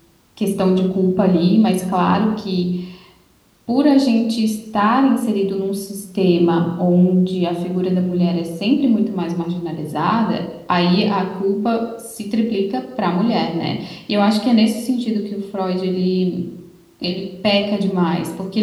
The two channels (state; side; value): identical; both; correlation 1.00